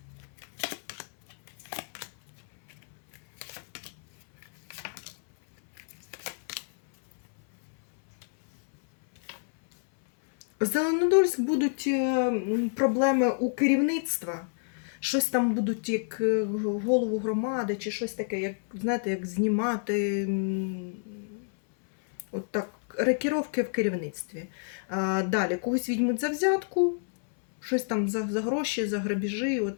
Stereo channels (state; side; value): silent; right; 59 dB below the other